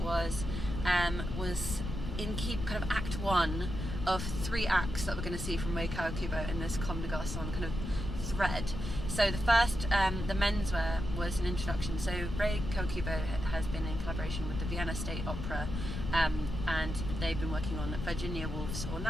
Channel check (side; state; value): left; noise; rumble, 5 dB below the sound